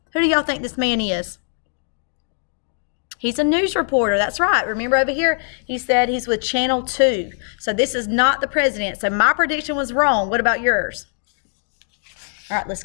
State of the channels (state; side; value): silent; right; digital silence